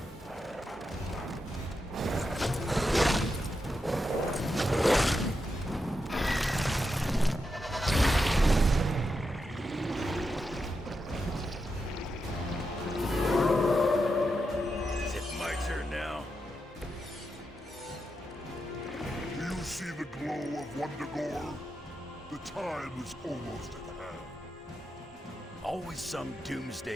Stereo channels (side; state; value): both; normal; correlation 0.86